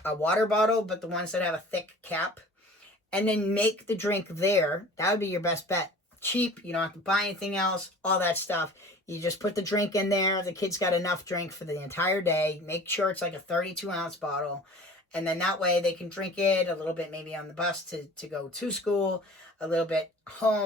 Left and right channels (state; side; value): normal; both; correlation 0.43